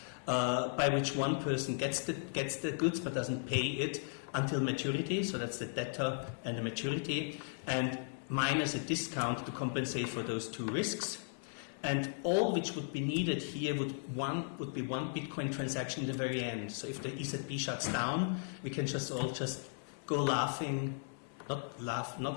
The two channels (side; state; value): right; silent; 54 dB below the other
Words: by which one person gets the goods but doesn't pay it until maturity. So that's the debtor and the maturity, and minus a discount to compensate for those 2 risks. And all which would be needed here would be one Bitcoin transaction in the very end. So if the ECB shuts down, we can just go laughing,